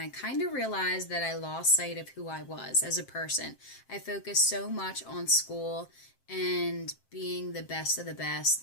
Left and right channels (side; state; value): right; late; 7.6 ms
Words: kind of realized that I lost sight of who I was as a person. I focused so much on school and being the best of the best